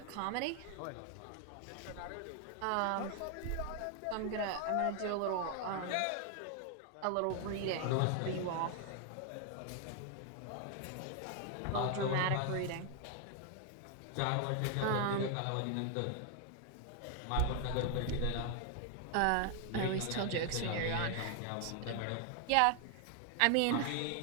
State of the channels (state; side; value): different; both; correlation 0.00